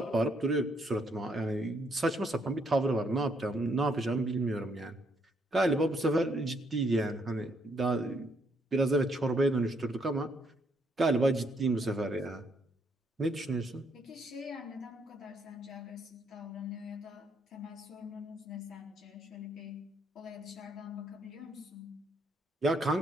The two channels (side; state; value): both; normal; correlation 0.72